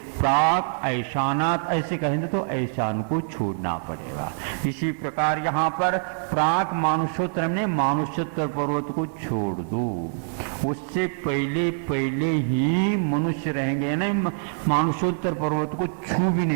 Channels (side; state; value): left; silent; digital silence